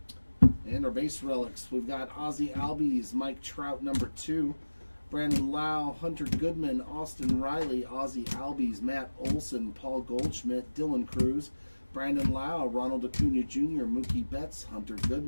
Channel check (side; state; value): both; inverted; correlation -1.00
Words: And our base relics, we've got Ozzie Albies, Mike Trout number 2, Brandon Lau, Hunter Goodman, Austin Riley, Ozzie Albies, Matt Olson, Paul Goldschmidt, Dylan Cruz, Brandon Lau, Ronald Acuna Jr., Mookie Betts, Hunter